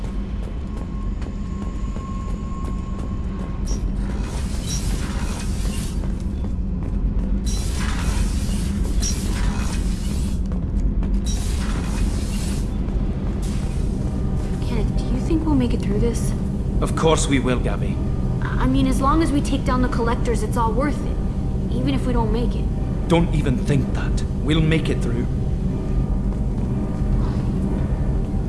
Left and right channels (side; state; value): both; identical; correlation 1.00